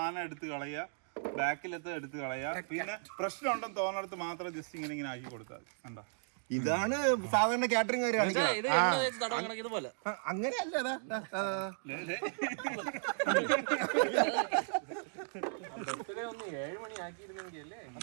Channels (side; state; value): left; silent; digital silence